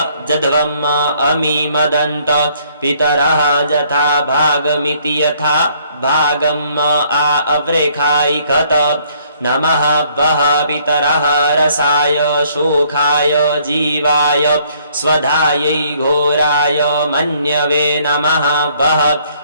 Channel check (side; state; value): both; inverted; correlation -0.64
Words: अमीमदन्त पितरः जथा भागमिति यथा भागम् अवृखायिकत नमः वः पितरः रसाय शोकाय जीवाय स्वधायै घोराय मन्यवे नमः वः